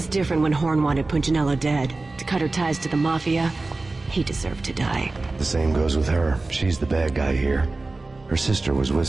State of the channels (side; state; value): left; quieter; 3.3 dB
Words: different when Horn wanted Punchinello dead. To cut her ties to the Mafia, he deserved to die. The same goes with her. She's the bad guy here. Her sister was